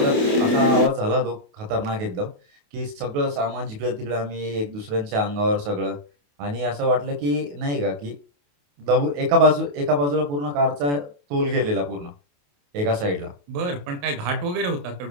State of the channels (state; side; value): late; left; 28 ms